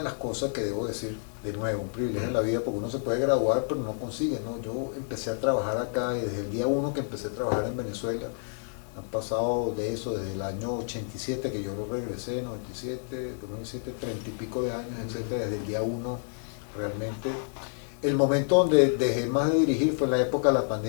las cosas que debo decir, de nuevo, un privilegio en la vida, porque uno se puede graduar pero no consigue, ¿no? Yo empecé a trabajar acá, y desde el día 1 que empecé a trabajar en Venezuela, han pasado de eso, desde el año 87 que yo regresé, 97, 2007, 30 y pico de años, etcétera, desde el día 1 realmente. El momento donde dejé más de dirigir fue en la época de la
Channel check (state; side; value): silent; right; digital silence